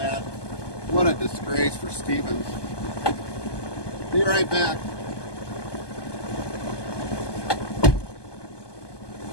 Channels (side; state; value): right; late; 1.2 ms